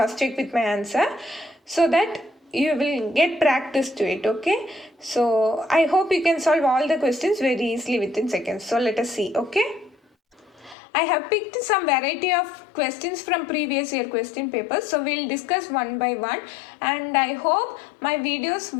check with my answer so that you will get practice to it. Okay, so I hope you can solve all the questions very easily within seconds. So let us see. Okay, I have picked some variety of questions from previous year question papers, so we'll discuss one by one, and I hope my videos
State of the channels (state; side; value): drops out; right; at 10.8 s